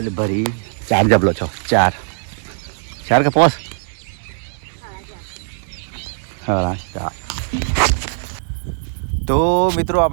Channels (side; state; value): left; silent; digital silence